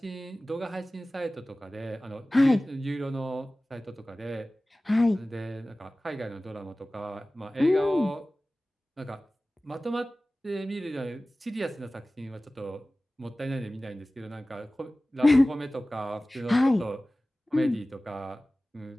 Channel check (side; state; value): both; normal; correlation 0.97